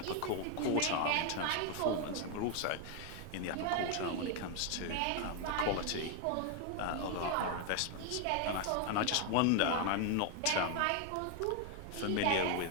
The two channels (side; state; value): both; different; correlation 0.01